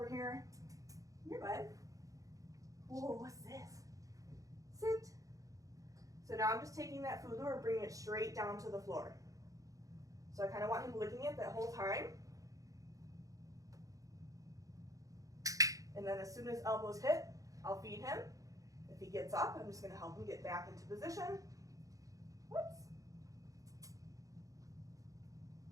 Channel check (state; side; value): late; left; 0.16 ms